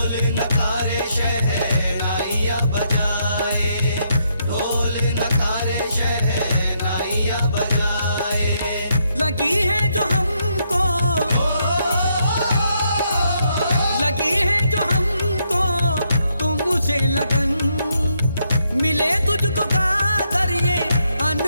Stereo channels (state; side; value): inverted; both; correlation -0.76